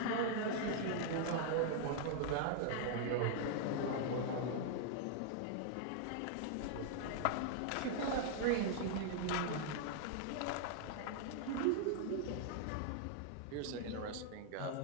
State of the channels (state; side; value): different; both; correlation 0.00